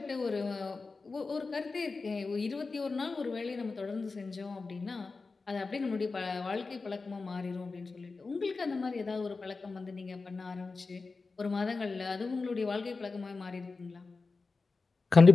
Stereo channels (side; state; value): right; quieter; 4.1 dB